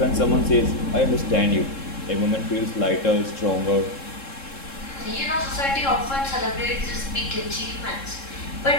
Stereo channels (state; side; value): late; right; 3.7 ms